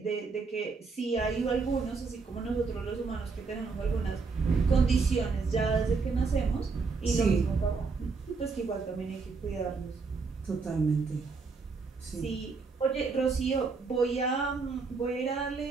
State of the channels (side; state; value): left; quieter; 4.5 dB